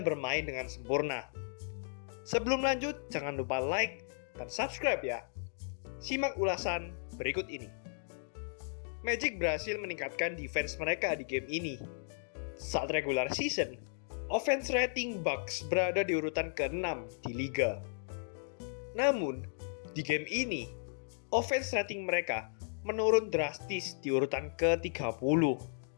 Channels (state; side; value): silent; right; digital silence